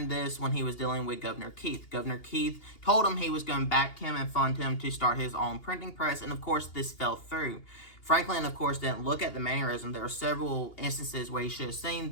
this when he was dealing with Governor Keith. Governor Keith told him he was going to back him and fund him to start his own printing press, and of course this fell through. Franklin, of course, didn't look at the mannerism. There were several instances where he should have seen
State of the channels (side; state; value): right; late; 2.8 ms